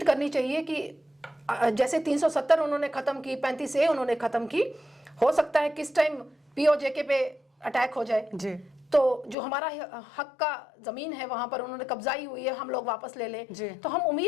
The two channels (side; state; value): right; drops out; at 9.3 s